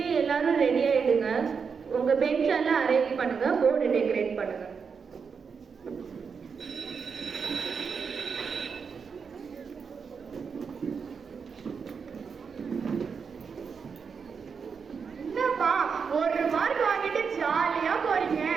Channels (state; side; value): quieter; left; 5.9 dB